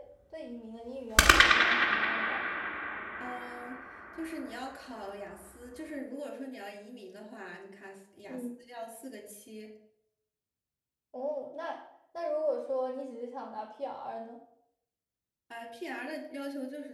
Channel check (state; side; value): identical; both; correlation 1.00